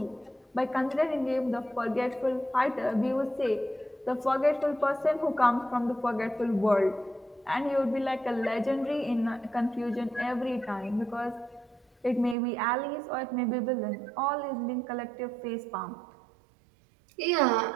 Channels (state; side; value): drops out; left; at 12.4 s